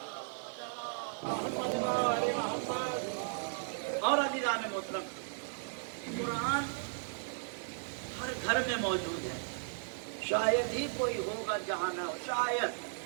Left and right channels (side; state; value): left; silent; digital silence